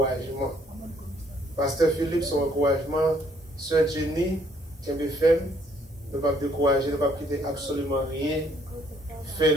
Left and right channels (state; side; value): normal; both; correlation 0.66